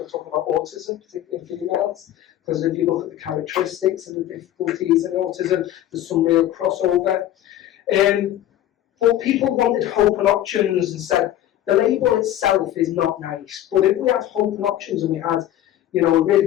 are talking about autism, particularly in females, because if you look at the characteristics and the difficulties in autism, there's some real crossover. But people wanted hope and options and said, the label itself is not nice, but if we had hope and options and we had a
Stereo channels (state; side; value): quieter; right; 12.6 dB